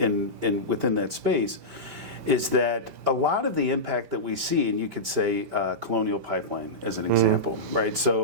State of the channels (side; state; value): left; late; 5.1 ms